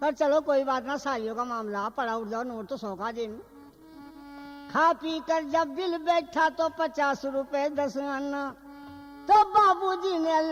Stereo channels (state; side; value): identical; both; correlation 1.00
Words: पर चलो कोई बात ना, सालियों का मामला पड़ा उठ जाओ, नोट तो 100 का जेब में। खा पी कर जब बिल बैठा तो 50 रुपए 10 आना। तो बाबूजी ने